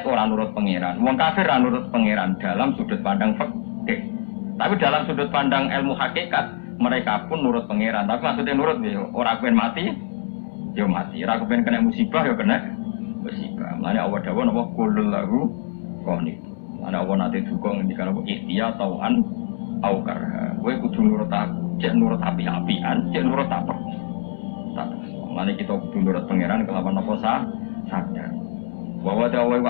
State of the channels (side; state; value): right; silent; digital silence